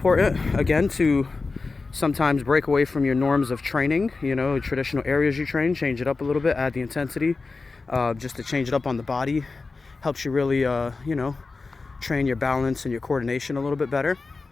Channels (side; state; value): right; quieter; 4.0 dB